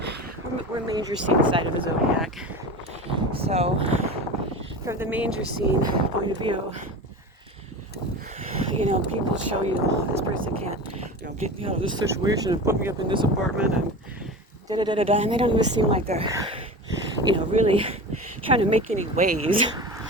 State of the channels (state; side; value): normal; both; correlation 0.30